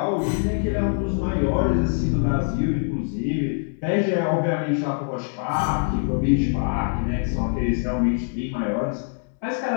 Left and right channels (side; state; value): right; silent; digital silence